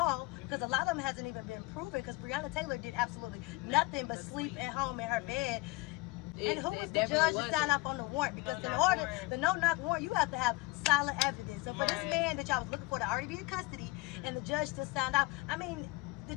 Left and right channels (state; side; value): quieter; right; 23.7 dB